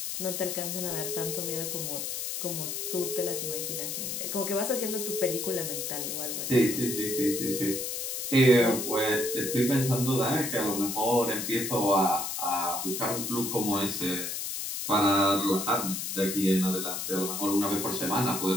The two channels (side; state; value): left; noise; hiss, 4 dB below the sound